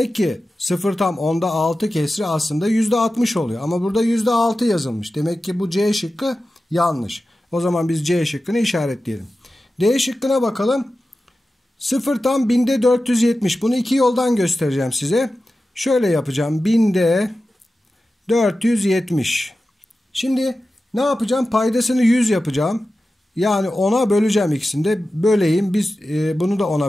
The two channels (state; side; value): normal; both; correlation 0.94